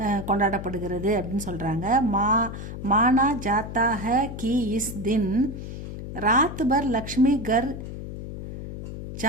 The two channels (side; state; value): left; noise; hum, 8 dB below the sound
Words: கொண்டாடப்படுகிறது அப்படின்னு சொல்கிறாங்க. மானா ஜாத்தா है कि इस दिन रात भर लक्ष्मी घर